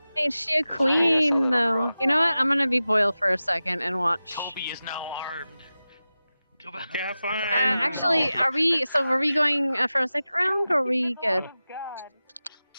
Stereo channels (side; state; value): both; inverted; correlation -0.95